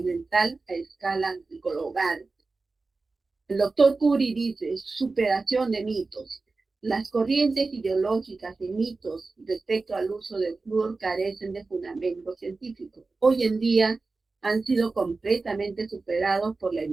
dental a escala global. El doctor Curie dice, superación de mitos. Las corrientes ideológicas de mitos respecto al uso del flúor carecen de fundamento científico. Hoy en día han sido completamente superados por la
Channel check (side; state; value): left; quieter; 3.8 dB